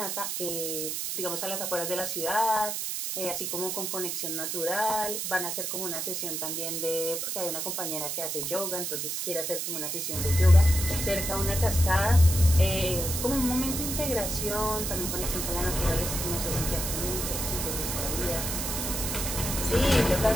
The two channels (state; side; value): noise; right; hiss, 2 dB below the sound